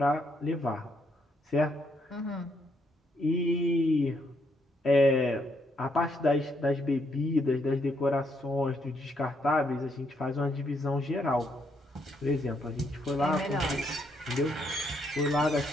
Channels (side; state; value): both; normal; correlation 0.74